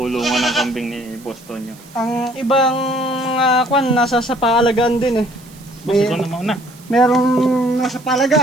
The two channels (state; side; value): noise; right; hiss, 24 dB below the sound